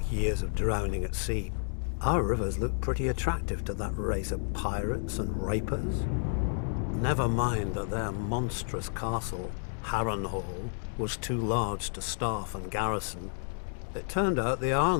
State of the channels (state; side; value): silent; right; digital silence